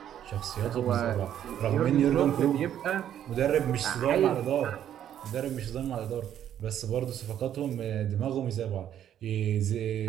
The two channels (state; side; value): quieter; left; 10.4 dB